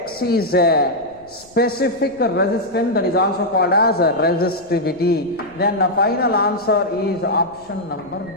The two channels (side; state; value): left; noise; rumble, 29 dB below the sound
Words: is a specific resistance, that is also called as resistivity. Then the final answer is option number